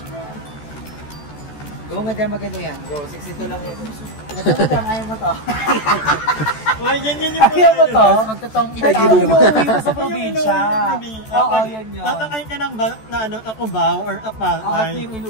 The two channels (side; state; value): right; late; 14 ms